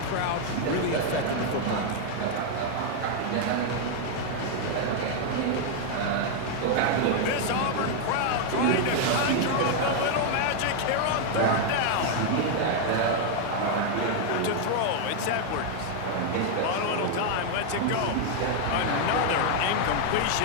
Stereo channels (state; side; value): different; both; correlation 0.00